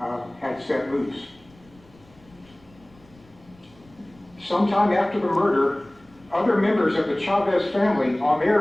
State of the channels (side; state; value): left; noise; rumble, 28 dB below the sound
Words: had set loose. Sometime after the murder, other members of the Chavez family on